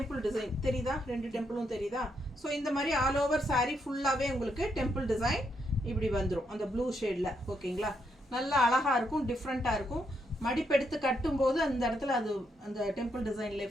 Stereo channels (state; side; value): normal; both; correlation 0.78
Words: டிசைன் தெரியுதா? 2 டெம்பிளும் தெரியுதா? ஸோ இந்த மாதிரி ஆல் ஓவர் சாரீ ஃபுல்லாகவே உங்களுக்கு டெம்பிள் டிசைன் இப்படி வந்துடும் அந்த ப்ளூ ஷேடில். ஓகேங்களா? நல்லா அழகாக இருக்கும், டிஃப்ரெண்ட்டாக இருக்கும். மடிப்பெடுத்து கட்டும்போது அந்த இடத்துல அது அந்த டெம்பிள் டிசைன்